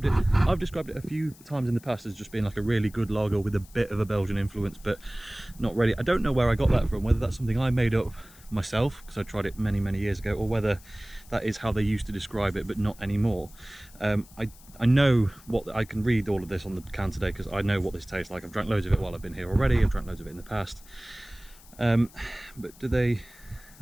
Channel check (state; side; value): noise; left; hiss, 23 dB below the sound